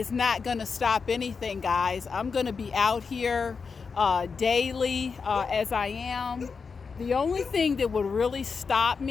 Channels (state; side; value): quieter; right; 5.3 dB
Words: not going to stop anything, guys. I'm going to be out here daily as I am. The only thing that would really stop